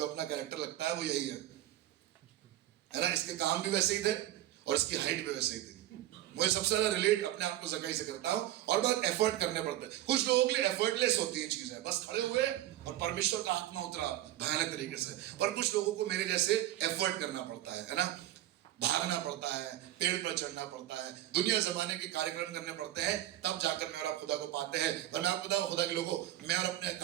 अपना कैरेक्टर लगता है वो यही है ना? इसके काम भी वैसे ही थे और इसकी हाइट भी वैसे ही थी। मुझे सबसे ज्यादा रिलेट अपने आप को जकाई से करता हूं, और बहुत एफर्ट करने पड़ते हैं। कुछ लोगों के लिए एफर्टलेस होती हैं चीजें, बस खड़े हुए और परमेश्वर का आत्मा उतरा भयानक तरीके से। पर कुछ लोगों को मेरे जैसे एफर्ट करना पड़ता है ना, भागना पड़ता है, पेड़ पर चढ़ना पड़ता है, दुनिया जमाने के कार्यक्रम करने पड़ते हैं, तब जाकर मैं और आप खुदा को पाते हैं। पर मैं आपको बताऊं, खुदा के लोगों, मैं और अपने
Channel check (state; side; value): quieter; left; 13.8 dB